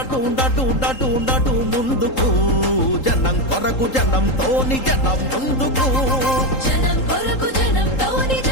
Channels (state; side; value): late; right; 3.8 ms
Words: నటు నటు నటు నటు ముందుకు జనం కొరకు జనంతోని జనం ముందుకు జనం కొరకు జనంతోని